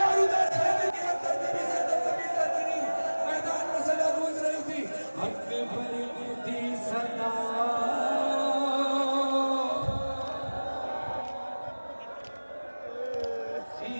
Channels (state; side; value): inverted; both; correlation -1.00